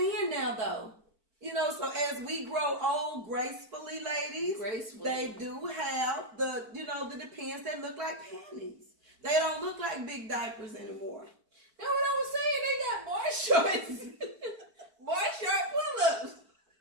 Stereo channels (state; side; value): late; left; 4.5 ms